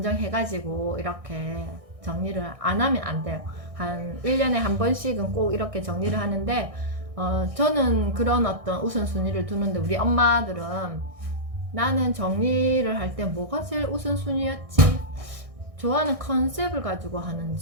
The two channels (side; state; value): left; late; 1.6 ms